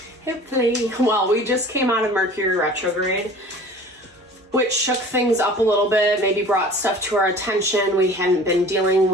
Hopefully. Well, we just came out of Mercury retrograde, which shook things up a little bit, maybe brought stuff to our attention we hadn't been dealing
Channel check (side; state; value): both; normal; correlation 0.45